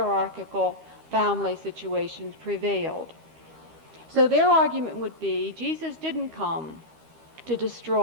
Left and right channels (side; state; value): left; late; 13 ms